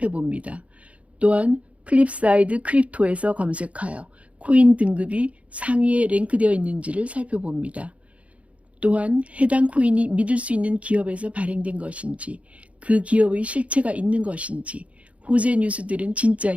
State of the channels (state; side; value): late; left; 0.064 ms